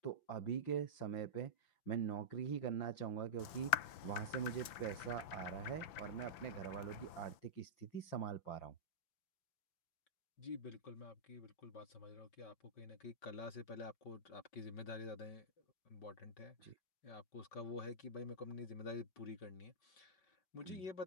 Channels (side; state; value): right; late; 5.9 ms